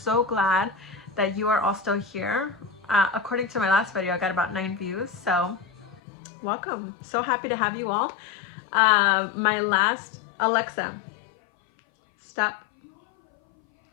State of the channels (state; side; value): drops out; right; at 6.0 s